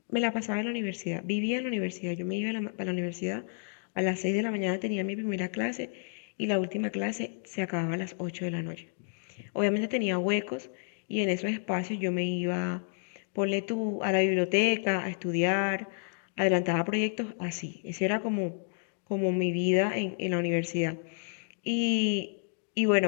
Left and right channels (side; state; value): right; silent; 57 dB below the other